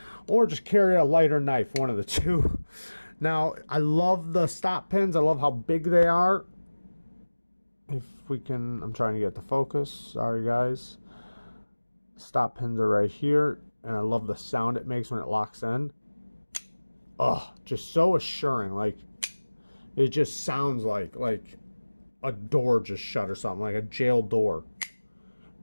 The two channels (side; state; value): both; inverted; correlation -1.00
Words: Or just carry a lighter knife, one of the two. Now, I love the stop pins. I love how big they are. If we can, I'm trying to get the focus. Sorry, guys. Stop pins are right here. And I love the sound it makes when it locks in. Oh, just so assuring. Like, it just sounds like a door just shut or something, like a jail door.